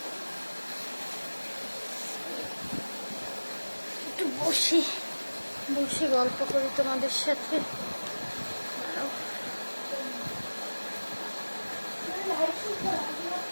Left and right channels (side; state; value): both; inverted; correlation -1.00